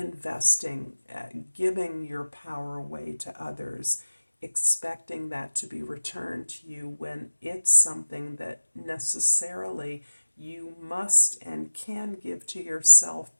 giving your power away to others, expecting that to be returned to you when it's something that necessarily you must and can give to yourself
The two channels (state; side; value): inverted; both; correlation -1.00